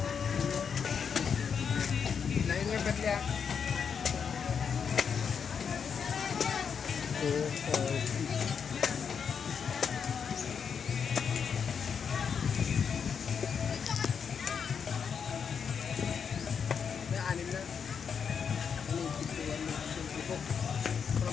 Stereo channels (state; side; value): quieter; right; 6.7 dB